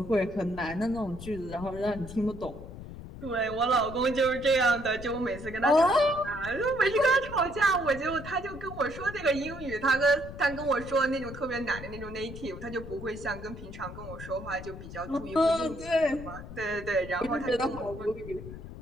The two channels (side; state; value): left; noise; rumble, 12 dB below the sound